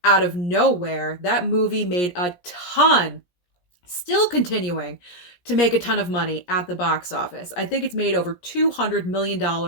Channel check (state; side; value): late; right; 17 ms